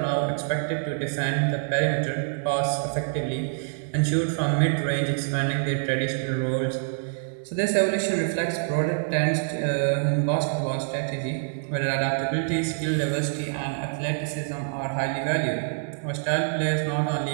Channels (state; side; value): silent; left; digital silence